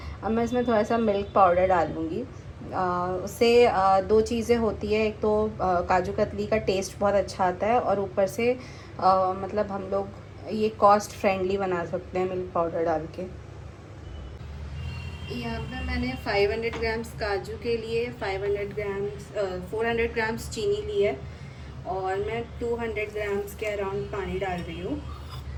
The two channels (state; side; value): identical; both; correlation 1.00